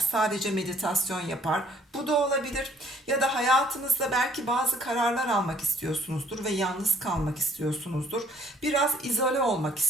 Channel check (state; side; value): normal; both; correlation 0.60